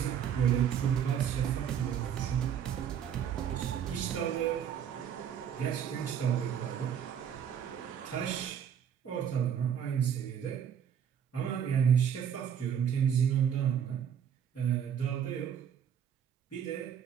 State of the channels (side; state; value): left; quieter; 8.6 dB